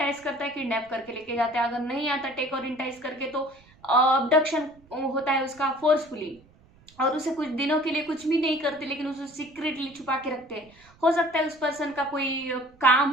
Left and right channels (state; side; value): noise; right; rumble, 28 dB below the sound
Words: करता है, किडनैप करके लेके जाता है। अगर नहीं आता टेक और इंटाइज करके तो अबडक्शन होता है उसका फोर्सफुली, और उसे कुछ दिनों के लिए कुछ भी नहीं करते लेकिन उसे सीक्रेटली छुपा के रखते हैं। हो सकता है उस पर्सन का कोई काम